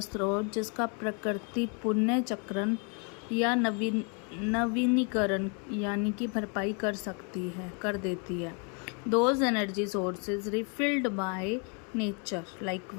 स्रोत जिसका प्रकृति पुनर्चक्रण या नवीनीकरण यानी कि भरपाई कर देती है। Those energy sources refilled by nature like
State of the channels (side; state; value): right; quieter; 36.5 dB